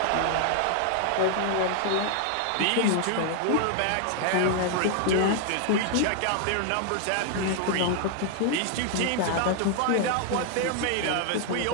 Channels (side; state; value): both; different; correlation 0.00